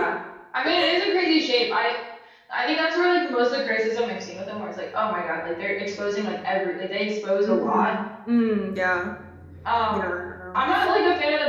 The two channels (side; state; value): both; identical; correlation 1.00